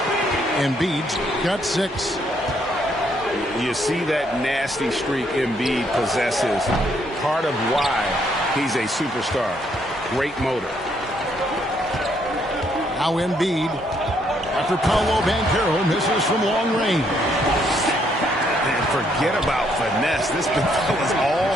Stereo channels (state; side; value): normal; both; correlation 0.71